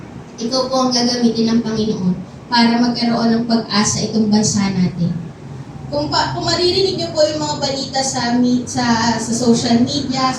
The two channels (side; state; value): both; identical; correlation 1.00